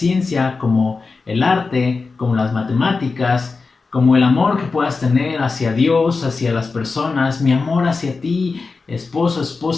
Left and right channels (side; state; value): right; quieter; 4.2 dB